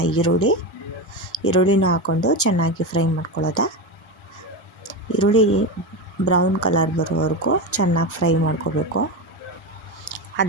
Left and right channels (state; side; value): normal; both; correlation 0.18